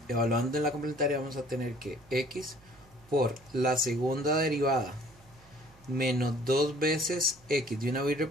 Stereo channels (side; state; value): right; noise; hum, 27 dB below the sound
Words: en la complementaria vamos a tener que x por la segunda derivada menos 2 veces x, de una vez